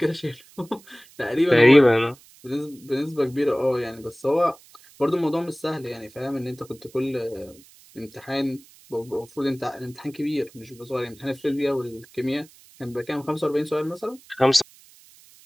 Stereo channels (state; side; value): noise; right; hiss, 25 dB below the sound